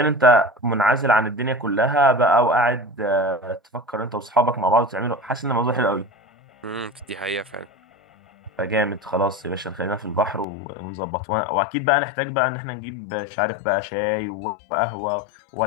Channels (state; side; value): drops out; right; at 10.5 s